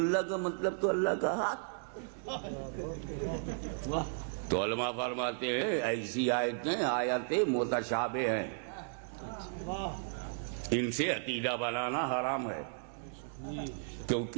کا مطلب تو اللہ کا ہاتھ. تو علماء فرماتے ہیں ایسی آیتیں متشابہ ہیں, ان سے عقیدہ بنانا حرام ہے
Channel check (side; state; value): left; silent; digital silence